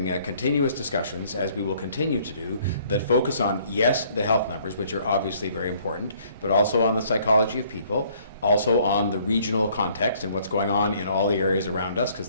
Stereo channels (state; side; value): inverted; both; correlation -0.61